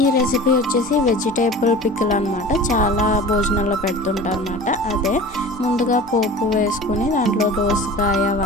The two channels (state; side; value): normal; both; correlation 0.38